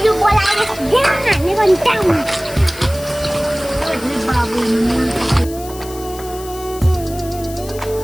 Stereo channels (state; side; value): noise; left; hiss, 16 dB below the sound